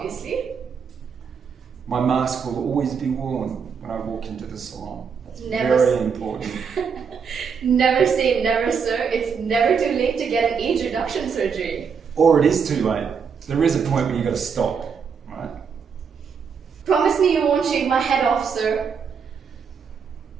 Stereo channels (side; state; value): left; quieter; 6.3 dB